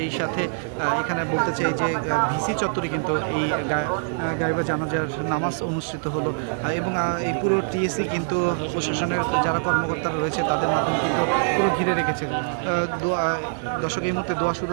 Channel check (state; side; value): silent; left; digital silence